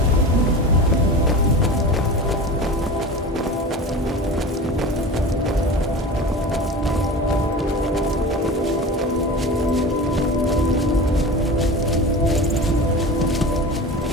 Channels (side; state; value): both; normal; correlation 0.32